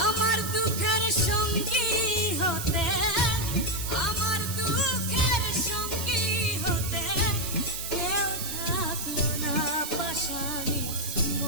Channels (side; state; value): right; noise; hiss, 6 dB below the sound